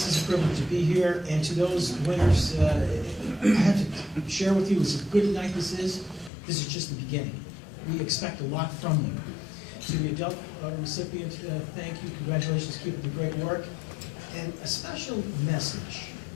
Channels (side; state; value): right; drops out; at 6.3 s